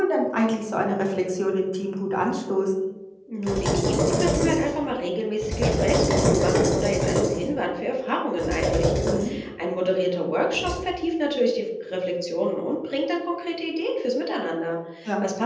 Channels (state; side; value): identical; both; correlation 1.00